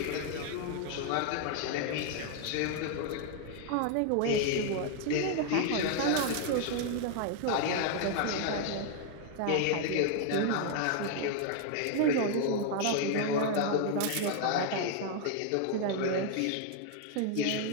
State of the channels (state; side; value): different; both; correlation 0.00